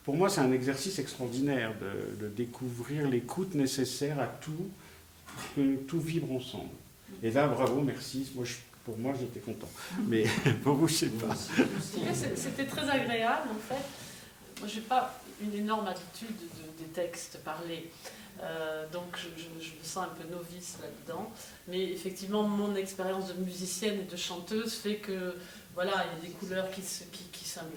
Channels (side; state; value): both; identical; correlation 1.00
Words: Pour moi, c'est un exercice extraordinaire de découvrir l'écoute nécessaire à tout, pour que tout vibre ensemble. Et là, bravo, merci. Pour moi, j'étais content. Mais pour vous, je ne sais pas. C'était très agréable, en fait. Moi, je n'ai pas une énorme habitude des textes parlés. Donc je me sens un peu novice là-dedans. Mais effectivement, mon expérience de musicienne et de chanteuse fait que voilà, il y a des couleurs qui